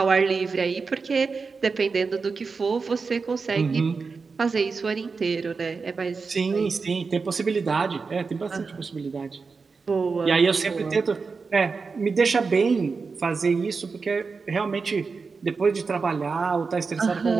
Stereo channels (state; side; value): quieter; left; 4.7 dB